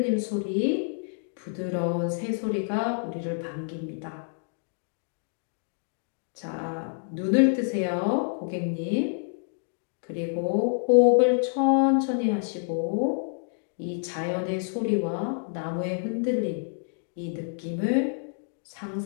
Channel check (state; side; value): silent; right; digital silence